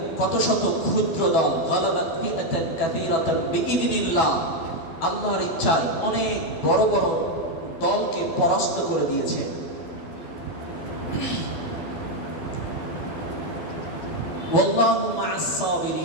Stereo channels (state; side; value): late; right; 12 ms